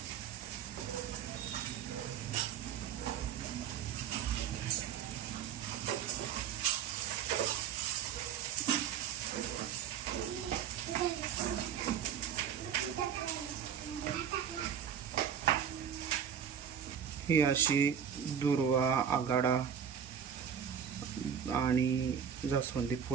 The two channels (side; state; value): left; quieter; 8.1 dB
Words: ही अशी दुर्वा, आघाडा आणि जास्वंदी